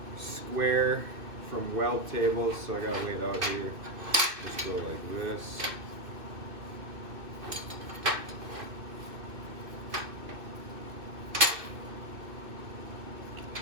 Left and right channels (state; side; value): late; left; 2.6 ms